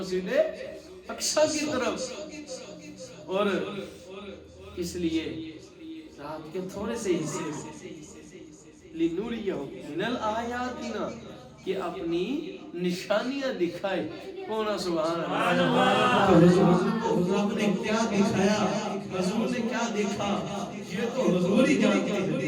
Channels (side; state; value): both; identical; correlation 1.00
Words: اقصی کی طرف. اور اس لیے رات کے تھوڑے سے حصے لنوریہ من الآیاتنا کہ اپنی نشانیاں دکھائے. کونا سبحان اللہ. حضور نے کیا دکھایا، حضور نے کیا دیکھا یہ تو حضور ہی جانتے ہیں.